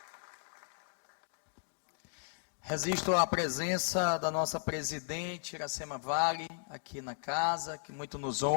Resisto à presença da nossa presidente, Iracema Vale, aqui na casa, que muito nos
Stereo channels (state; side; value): silent; right; digital silence